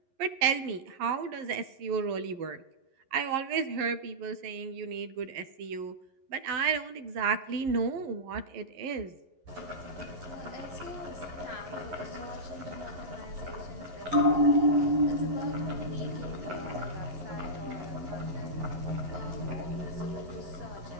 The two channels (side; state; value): left; late; 11 ms